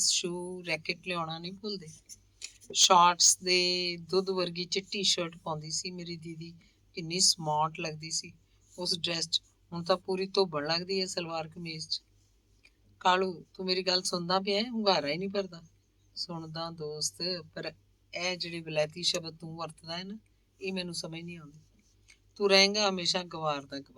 ਸ਼ੂ ਰੈਕਟ ਲਿਆਉਣਾ ਨਹੀਂ ਭੁੱਲਦੇ। ਸ਼ਾਰਟਸ ਦੇ ਦੁੱਧ ਵਰਗੀ ਚਿੱਟੀ ਸ਼ਰਟ ਪਾਉਂਦੀ ਸੀ ਮੇਰੀ ਦੀਦੀ, ਕਿੰਨੀ ਸਮਾਰਟ ਲੱਗਦੀ ਸੀ ਉਸ ਡਰੈਸ 'ਚ। ਹੁਣ ਤਾਂ ਪੂਰੀ ਧੋਬਣ ਲੱਗਦੀ ਹੈ ਸਲਵਾਰ ਕਮੀਜ਼ 'ਚ। ਕਾਲੂ, ਤੂੰ ਮੇਰੀ ਗੱਲ ਸੁਣਦਾ ਪਿਆ? ਹੁੰਗਾਰਾ ਹੀ ਨਹੀਂ ਭਰਦਾ। ਸੁਣਦਾ ਦੋਸਤ, ਪਰ ਇਹ ਜਿਹੜੇ ਵਿਲਾਇਤੀ ਸ਼ਬਦ ਤੂੰ ਵਰਤਦਾ ਹੈ ਨਾ, ਇਹ ਮੈਨੂੰ ਸਮਝ ਨਹੀਂ ਆਉਂਦੀ। ਤੂੰ ਰਹੇਂਗਾ ਹਮੇਸ਼ਾ ਗਵਾਰ ਦਾ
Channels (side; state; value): both; identical; correlation 1.00